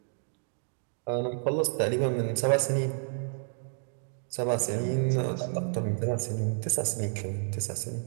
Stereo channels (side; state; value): left; silent; digital silence